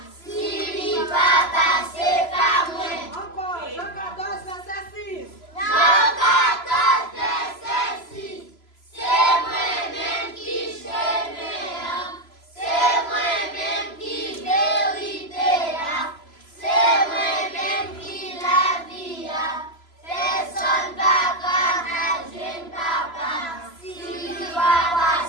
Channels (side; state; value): right; late; 3.0 ms